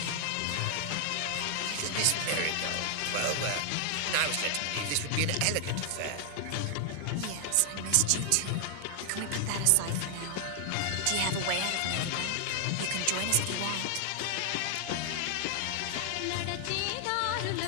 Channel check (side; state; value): both; different; correlation 0.00